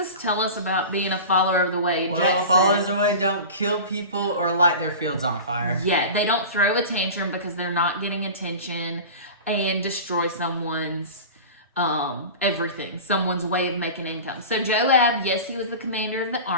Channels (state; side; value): inverted; both; correlation -0.33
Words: tell us about being a follower of the way? Well, followers of the way don't kill people or light their fields on fire. Yeah, they don't throw a tantrum because they're not getting attention and destroy someone's everything, someone's way of making income. So Joab, yes, he was the commander of the